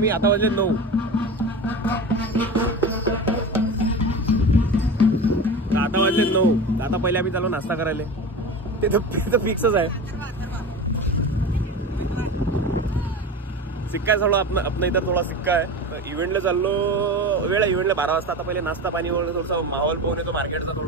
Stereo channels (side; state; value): both; normal; correlation 0.29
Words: आता वाजले 9. आता वाजले 9. आता पहिले आम्ही चालू नाश्ता करायला. ते तर फिक्सच आहे. सिक्का थोडा अपना इधर थोडा सिक्का आहे. तर इव्हेंटला चाललो, वेळ इव्हेंटला 12 वाजता. आता पहिले नाश्ता पाणी वगैरे थोडासा माहोल पाहून येतो मार्केटचा